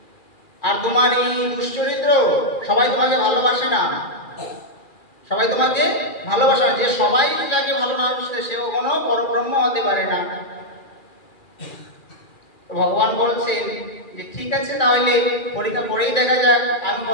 আর তোমার এই দুশ্চরিত্র, সবাই তোমাকে ভালোবাসে না, সবাই তোমাকে ভালোবাসে না। যে সবাই যাকে ভালো না বাসে সে কখনো পরব্রহ্ম হতে পারে না। ভগবান বলছেন যে ঠিক আছে, তাহলে পরীক্ষা করেই দেখা যাক আমি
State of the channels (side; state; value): right; late; 2.4 ms